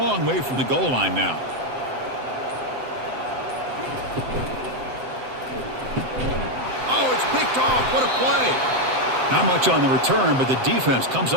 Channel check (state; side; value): late; left; 7.8 ms